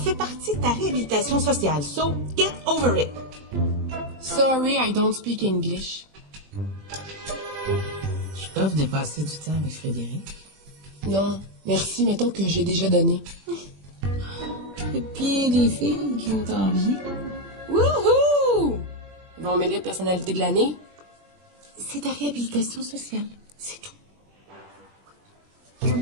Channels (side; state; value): left; late; 21 ms